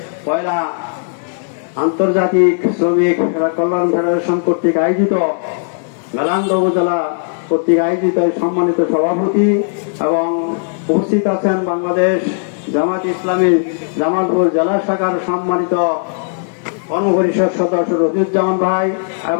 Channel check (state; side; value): silent; right; 61 dB below the other